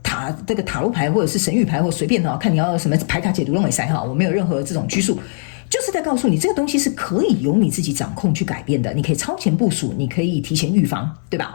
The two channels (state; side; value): silent; right; digital silence